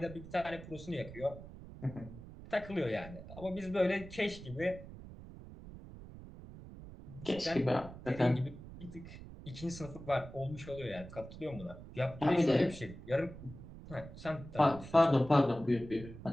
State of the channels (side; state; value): right; noise; rumble, 14 dB below the sound